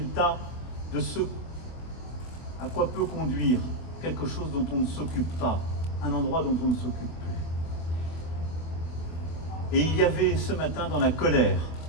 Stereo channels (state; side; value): late; right; 25 ms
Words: de ce à quoi peut conduire quelque chose dont on ne s'occupe pas, un endroit dont on ne s'occupe plus. Et il y avait ce matin dans la colère